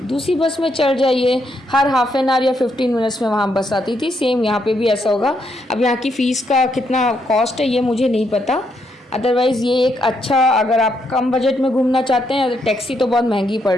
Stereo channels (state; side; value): normal; both; correlation 0.77